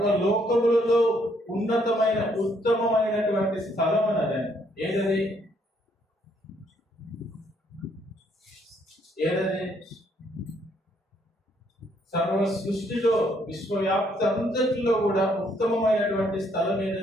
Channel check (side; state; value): both; normal; correlation 0.69